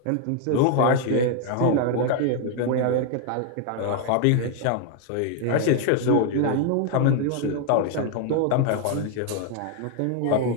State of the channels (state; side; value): different; both; correlation 0.00